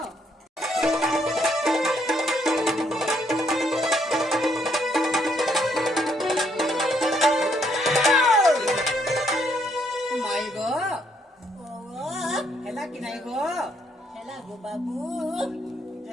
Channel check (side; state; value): both; normal; correlation 0.71